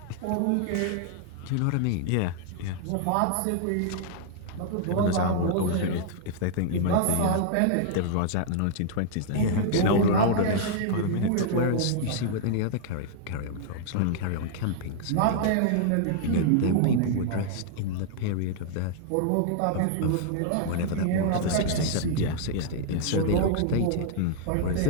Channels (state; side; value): different; both; correlation -0.01